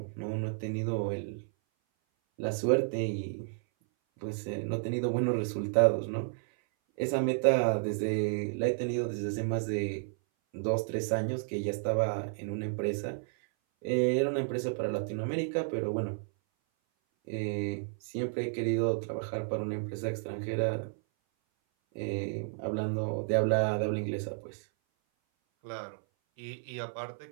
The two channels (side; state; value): left; silent; 56 dB below the other